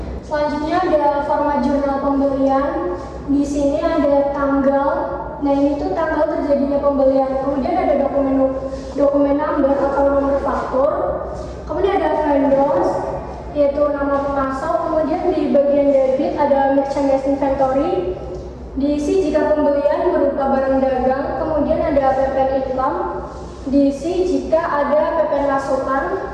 Selanjutnya ada format jurnal pembelian. Di sini ada tanggal. Nah, ini tuh tanggal terjadinya pembelian. Kemudian ada dokumen number atau nomor faktur. Kemudian ada vendors, yaitu nama pemasok. Kemudian di bagian debit ada merchandise inventory. Diisi jika pembelian berupa barang dagang. Kemudian ada PPN income. Diisi jika ada PPN masukan.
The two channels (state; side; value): identical; both; correlation 1.00